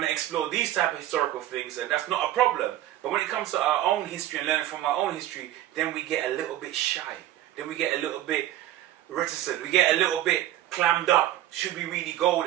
to explore these type of historical things, and that's not a problem. But when it comes to our own history and learning from our own history, then we get a little bit shy. Then we get a little bit reticent. We get a little bit clammed up. Should we really go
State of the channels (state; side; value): quieter; left; 13.5 dB